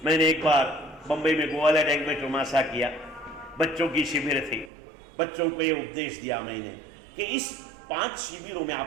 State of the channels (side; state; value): left; drops out; at 4.7 s